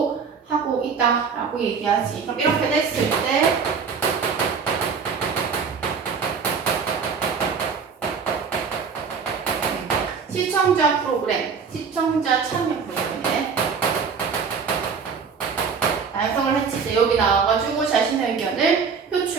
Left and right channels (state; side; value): quieter; left; 5.8 dB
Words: 하고 있다라고 얘기하지. 그럼 이렇게 됐을 때 시청자 프로그램, 시청자 참여 프로그램에 다양성을 해칠 때 여기 나와가지고 자신의 의견을